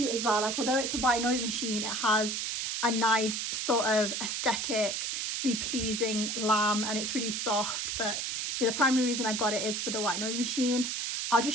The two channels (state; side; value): noise; right; hiss, 1 dB below the sound